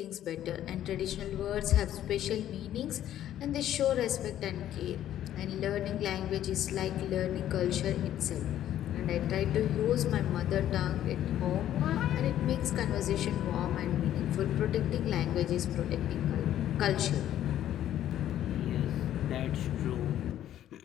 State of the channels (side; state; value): right; quieter; 11.8 dB